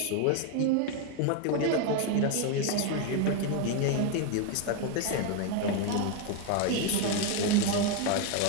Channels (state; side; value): different; both; correlation 0.01